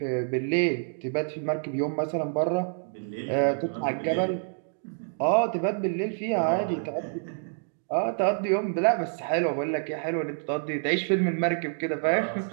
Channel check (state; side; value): silent; left; digital silence